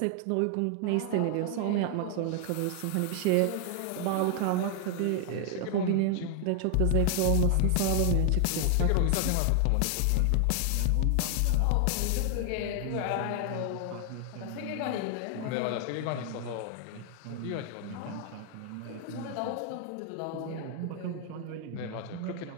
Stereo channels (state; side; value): different; both; correlation 0.00